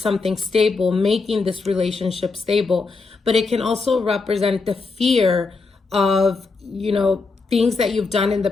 something stable, making this relationship stable. But it can also represent the fear of, you know, things that you've done in the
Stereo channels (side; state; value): right; quieter; 4.1 dB